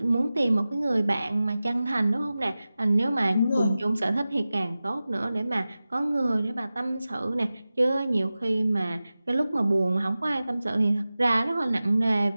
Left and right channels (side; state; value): both; inverted; correlation -0.96